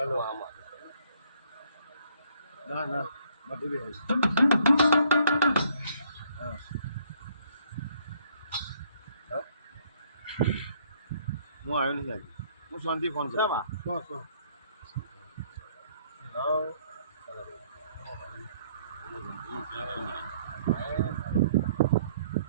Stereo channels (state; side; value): inverted; both; correlation -0.64